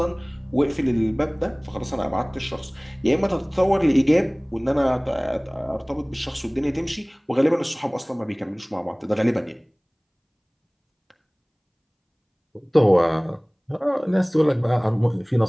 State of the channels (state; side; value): identical; both; correlation 1.00